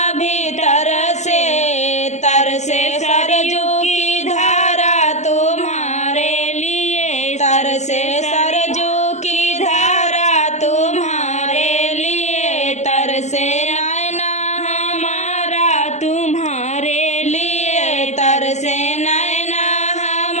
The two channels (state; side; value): late; right; 0.33 ms